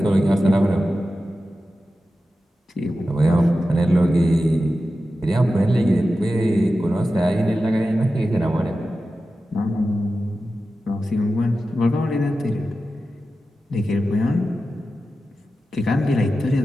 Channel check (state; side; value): normal; both; correlation 0.93